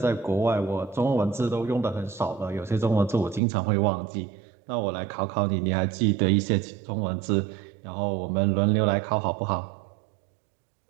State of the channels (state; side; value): drops out; left; at 3.4 s